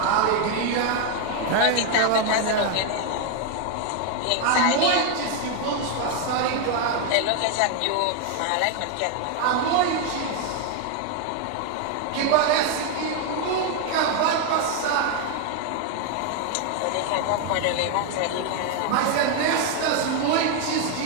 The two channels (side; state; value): both; different; correlation 0.01